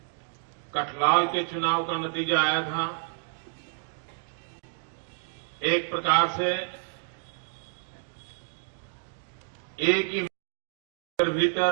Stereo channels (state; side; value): silent; left; digital silence